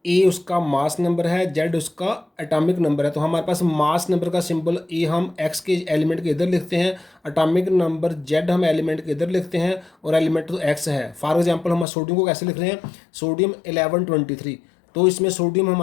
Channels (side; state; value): right; drops out; at 11.9 s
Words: ए उसका मास नंबर है, जेड उसका एटॉमिक नंबर है। तो हमारे पास मास नंबर का सिंबल ए हम एक्स के एलिमेंट के इधर लिखते हैं, एटॉमिक नंबर जेड हम एलिमेंट के इधर लिखते हैं, और एलिमेंट तो एक्स है। फॉर एग्जांपल हम सोडियम को कैसे लिख रहे हैं? सोडियम 1123। तो इसमें सोडियम